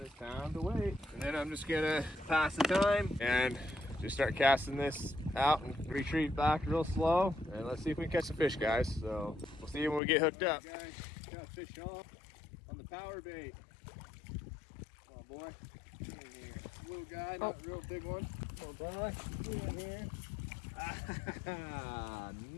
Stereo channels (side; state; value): right; drops out; at 10.0 s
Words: it's time to wait. And then I'm just gonna pass the time and just start casting this out and retreat back real slow. And let's see if we can catch some fish, guys. So we'll see when we get hooked up. Guys, got a fish on the power bait. Come on, boy. Get in here. Little guy, not a real big one. Come on, boy. Get in here. Ah,